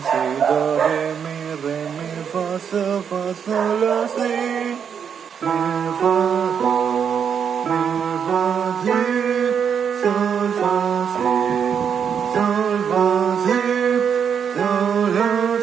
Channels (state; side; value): quieter; left; 7.4 dB